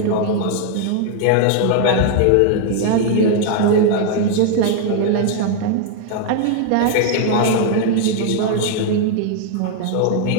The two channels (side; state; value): both; different; correlation 0.00